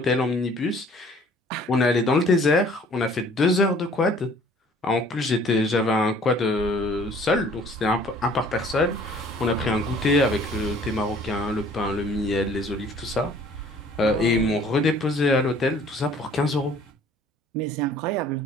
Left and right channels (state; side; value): normal; both; correlation 0.54